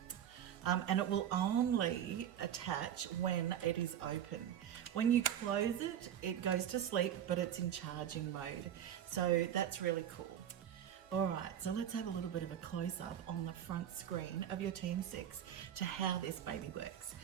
and it will only attach when it is open. When you close it, it goes to sleep, but it's in charging mode. So that's really cool. All right, so let's have a little bit of a close-up on the front screen of your TM6 to how this baby works.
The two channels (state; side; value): quieter; left; 10.1 dB